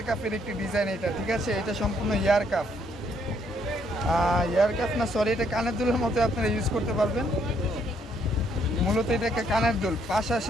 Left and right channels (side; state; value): both; normal; correlation 0.70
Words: কাপের একটি ডিজাইন এটা, ঠিক আছে। এটা সম্পূর্ণ ইয়ার কাপ, না সরি, এটা কানের দুলের মতো আপনারা ইউজ করতে পারবেন। মূলত এটা একটা কানের দুল, পাশা